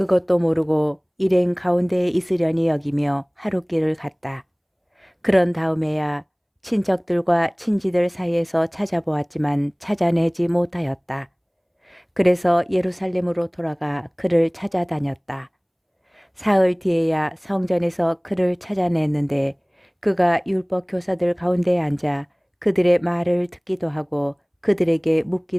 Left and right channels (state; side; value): identical; both; correlation 1.00